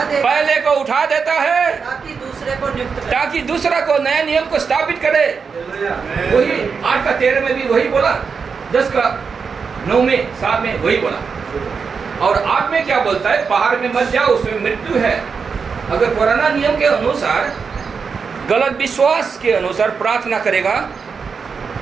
उठा देता है, ताकि दूसरे को नियुक्त करे। ताकि दूसरा को नया नियम को स्थापित करे। वही 8 का 13 में भी वही बोला, 10 का 9 में 7 में वही बोला। और 8 में क्या बोलता है? पहाड़ में मत जाओ, उसमें मृत्यु है। अगर पुराना नियम के अनुसार, गलत विश्वास के अनुसार प्रार्थना करेगा,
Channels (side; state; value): left; quieter; 5.6 dB